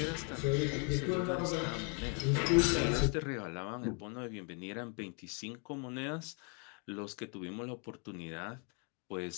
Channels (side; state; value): right; quieter; 37.3 dB